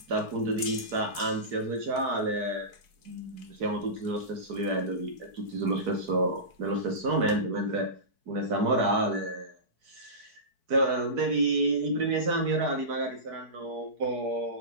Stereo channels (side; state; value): left; late; 4.6 ms